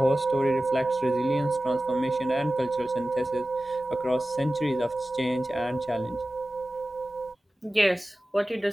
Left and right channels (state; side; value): normal; both; correlation 0.96